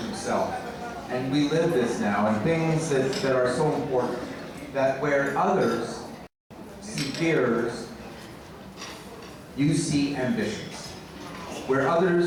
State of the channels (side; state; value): both; identical; correlation 1.00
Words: And we live this now, and things that are so important, that where others see fears, you see ambitions. Where